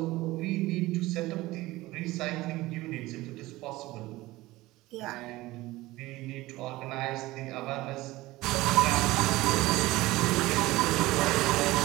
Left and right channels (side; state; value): left; quieter; 18.8 dB